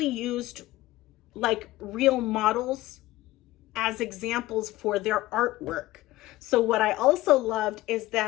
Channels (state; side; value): quieter; right; 17.3 dB